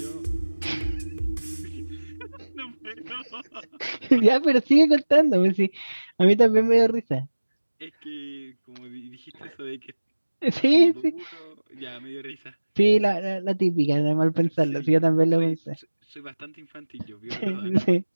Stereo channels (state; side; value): inverted; both; correlation -1.00